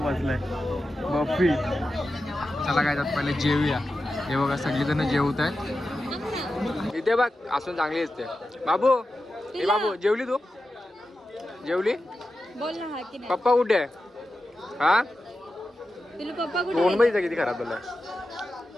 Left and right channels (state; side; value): normal; both; correlation 0.91